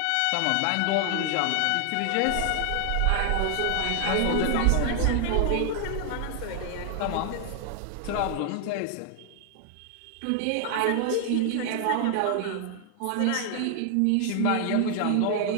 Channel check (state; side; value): different; both; correlation 0.00